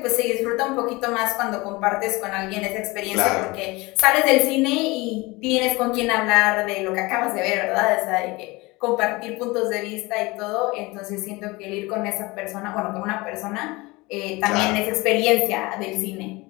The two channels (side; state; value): right; quieter; 23.1 dB